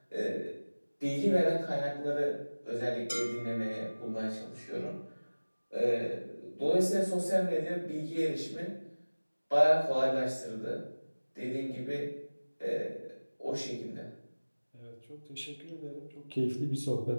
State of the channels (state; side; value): inverted; both; correlation -1.00